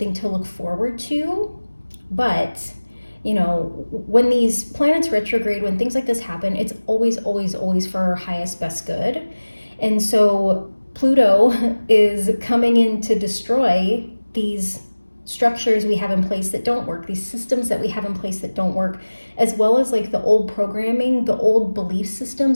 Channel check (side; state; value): both; inverted; correlation -1.00